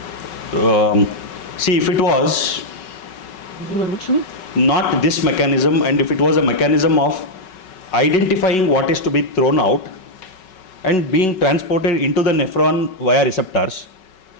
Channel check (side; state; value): right; late; 5.3 ms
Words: see, if it was not this mechanism, and if it was a mechanism of identifying what is to be thrown out and being transported into the nephron via receptors,